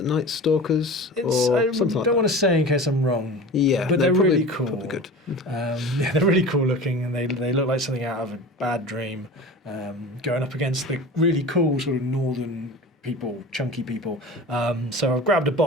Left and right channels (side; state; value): both; normal; correlation 0.35